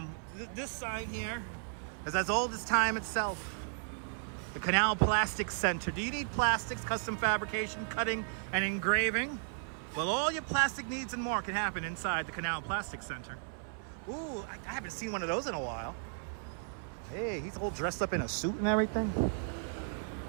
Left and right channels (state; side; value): silent; left; 55 dB below the other